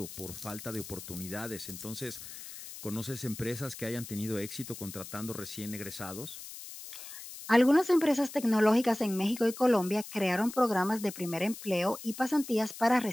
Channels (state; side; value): noise; left; hiss, 12 dB below the sound